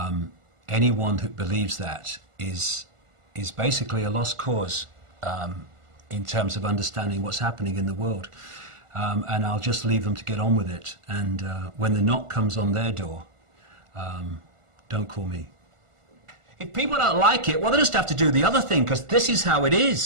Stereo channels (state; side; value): late; left; 1.4 ms